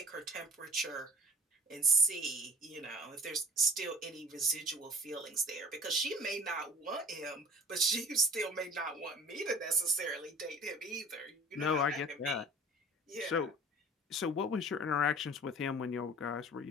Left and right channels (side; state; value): both; normal; correlation 0.46